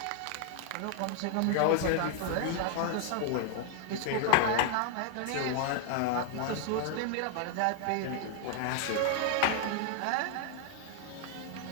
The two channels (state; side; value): different; both; correlation 0.00